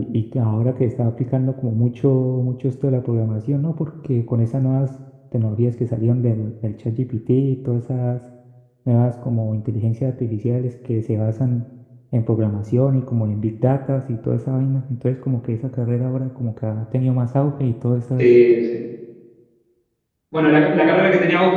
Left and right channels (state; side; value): identical; both; correlation 1.00